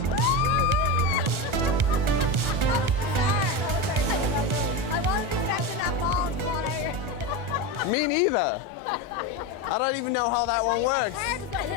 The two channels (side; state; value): left; late; 1.4 ms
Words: I wasn't expecting that ball to fall out. Me neither. I don't even know how that one works.